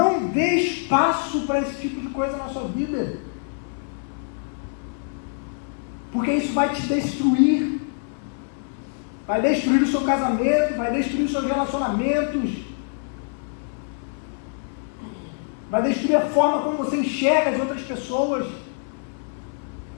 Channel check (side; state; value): right; silent; digital silence